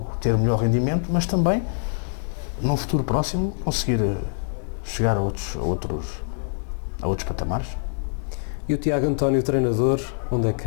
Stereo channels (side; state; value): right; silent; digital silence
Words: ter melhor rendimento, mas também num futuro próximo conseguir chegar a outros patamares. E o Tiago António, treinador, onde é que